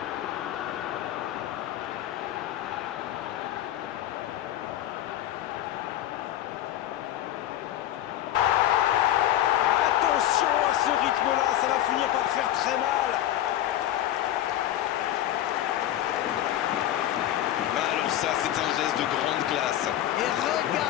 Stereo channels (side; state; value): right; quieter; 12.7 dB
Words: Attention à ce rythme-là, ça va finir par faire très mal. Alors ça, c'est un geste de grande classe. Et